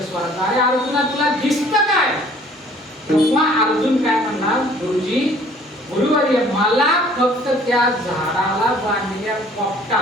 स्वरात, अरे अर्जुना तुला दिसतं काय? तेव्हा अर्जुन काय म्हणला, गुरुजी गुरुवर्य मला फक्त त्या झाडाला बांधलेल्या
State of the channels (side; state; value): both; normal; correlation 0.55